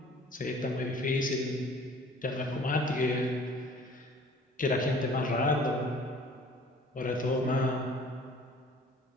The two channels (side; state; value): both; normal; correlation 0.50